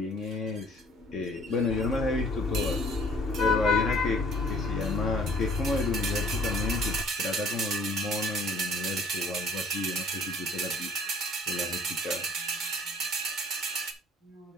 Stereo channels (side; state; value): both; normal; correlation 0.55